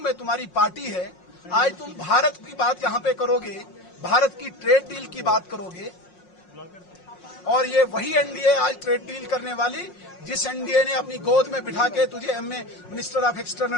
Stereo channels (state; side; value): late; right; 5.5 ms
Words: तुम्हारी पार्टी है, आज तुम भारत की बात यहां पे करोगे, भारत की ट्रेड डील की बात करोगे और ये वही एनडीए आज ट्रेड डील करने वाली जिस एनडीए ने अपनी गोद में बिठा के तुझे MA minister of